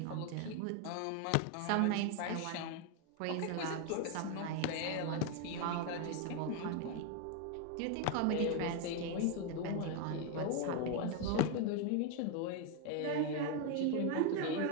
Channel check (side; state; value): both; different; correlation 0.01